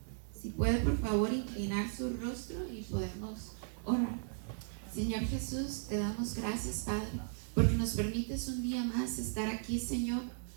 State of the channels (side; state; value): left; silent; digital silence